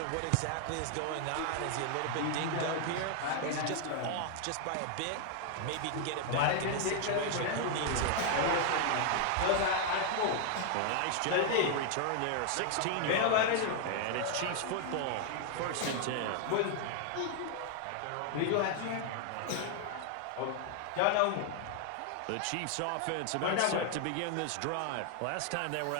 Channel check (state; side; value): different; both; correlation 0.00